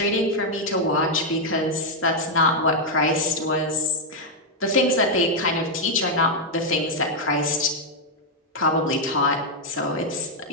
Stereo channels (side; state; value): both; normal; correlation -0.01